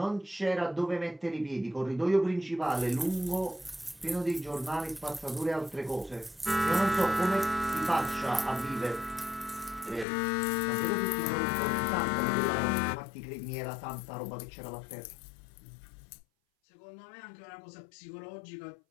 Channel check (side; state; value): right; drops out; at 10.1 s